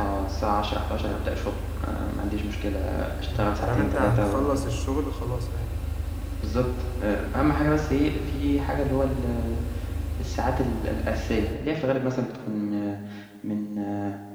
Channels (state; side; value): identical; both; correlation 1.00